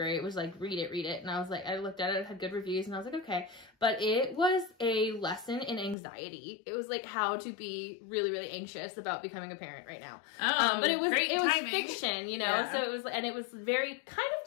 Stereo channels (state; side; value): drops out; right; at 6.0 s